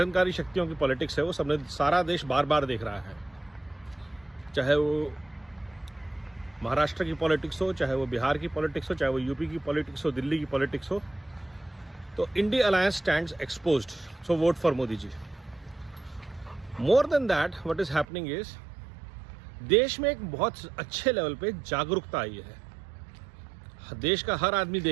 शक्तियों की पॉलिटिक्स है वो सबने सारा देश बार बार देख रहा है। चाहे वो महाराष्ट्र की पॉलिटिक्स हो, चाहे वो बिहार की पॉलिटिक्स हो, चाहे वो यूपी की पॉलिटिक्स हो, दिल्ली की पॉलिटिक्स हो, तो INDI alliance stands exposed, so vote for Modi ji. More than that what is happening is देश में एक बहुत अच्छे लेवल पे जागरूकता आई है। देश का हर आदमी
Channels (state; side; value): drops out; left; at 18.1 s